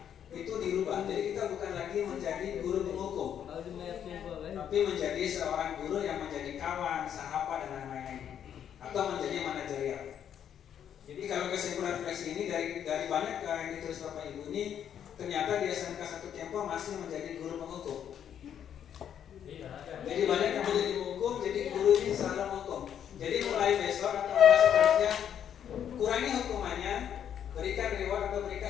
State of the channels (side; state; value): right; quieter; 9.2 dB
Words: itu dirubah. Jadi kita bukan lagi menjadi guru penghukum, tapi menjadi seorang guru yang menjadi kawan, sahabat dan lain-lain, atau menjadi manajerial. Jadi kalau kesimpulan refleksi ini dari banyak yang ditulis Bapak Ibu ini, ternyata di SMK 1 Kempo masih menjadi guru penghukum. Jadi banyak yang menjadi penghukum, jadi guru ini selalu menghukum. Jadi mulai besok atau seterusnya kurangi hukumannya, berikan reward atau